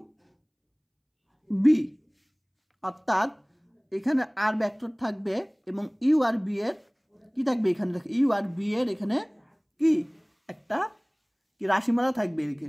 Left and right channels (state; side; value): identical; both; correlation 1.00